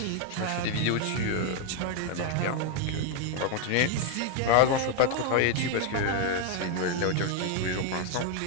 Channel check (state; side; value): different; both; correlation 0.01